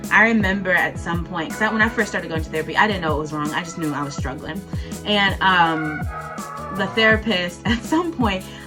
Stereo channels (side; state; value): both; identical; correlation 1.00